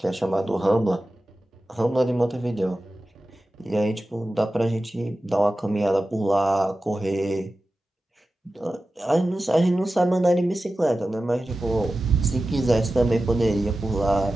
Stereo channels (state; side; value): normal; both; correlation 0.94